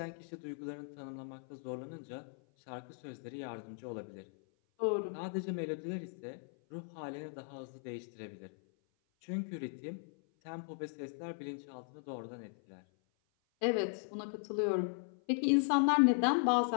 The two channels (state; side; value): silent; right; 53 dB below the other